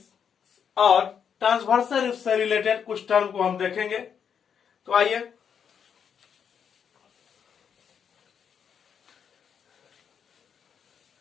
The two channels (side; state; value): right; quieter; 7.5 dB